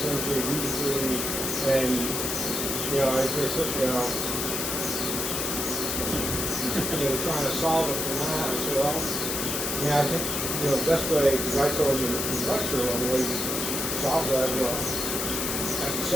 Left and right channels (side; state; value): left; noise; hiss, 1 dB below the sound